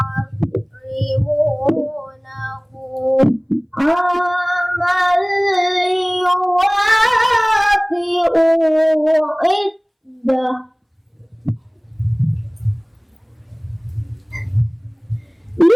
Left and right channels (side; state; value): both; identical; correlation 1.00